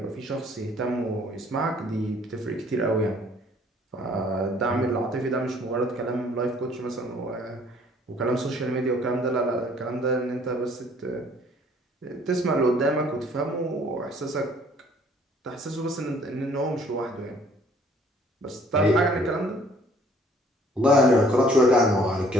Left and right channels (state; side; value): normal; both; correlation 0.58